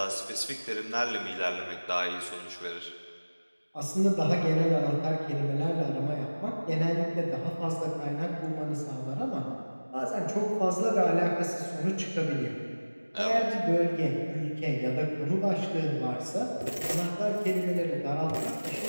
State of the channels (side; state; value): both; inverted; correlation -1.00